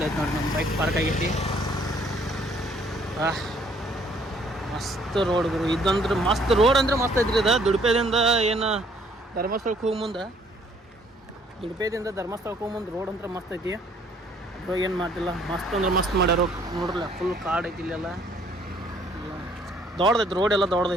ನೋಡಿ, ನಮ್ಮ ಬೈಕ್ ಪಾರ್ಕ್ ಆಗೈತಿ. ಮಸ್ತ್ ರೋಡ್ ಗುರು, ಇದಂದ್ರೆ ಮಸ್ತ್ ರೋಡ್ ಅಂದ್ರೆ ಮಸ್ತ್ ಐತ್ರಿ. ಇದು ದುಡುಪೆದಿಂದ ಏನು ಧರ್ಮಸ್ಥಳಕ್ಕೆ ಹೋಗಿ ಮುಂದೆ, ರೋಡ್ ಅಂದ್ರೆ ಮಸ್ತ್ ಐತಿ. ಅದ್ರಾಗ ಏನು ಮಾಡ್ತಿಲ್ಲ, ಮಸ್ತ್ ಅಂದ್ರೆ ಮಸ್ತ್ ಮಾಡ್ಯಾರ. ನೋಡ್ರಲ್ಲ, ಫುಲ್ ಕಾಡ್ ಐತಿ ಇಲ್ಲೆಲ್ಲ. ದೊಡ್ಡದೈತಿ ರೋಡ್, ಎಲ್ಲ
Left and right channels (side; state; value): both; normal; correlation 0.62